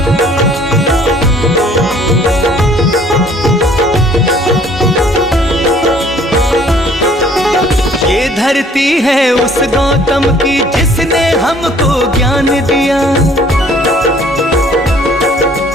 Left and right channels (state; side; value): normal; both; correlation 0.57